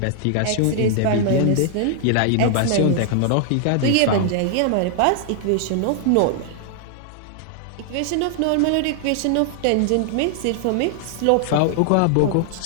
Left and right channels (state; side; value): different; both; correlation 0.00